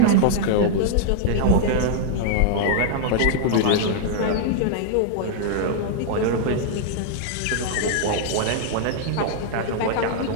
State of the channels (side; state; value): both; different; correlation -0.01